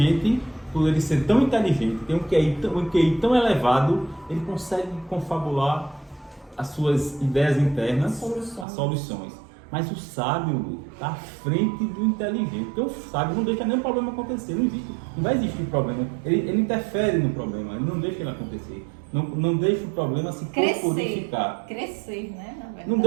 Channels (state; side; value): drops out; left; at 8.7 s